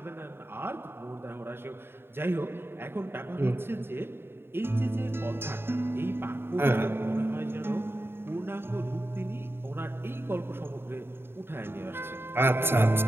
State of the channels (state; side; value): late; left; 0.11 ms